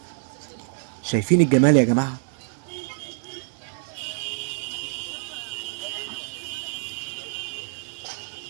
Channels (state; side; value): silent; left; digital silence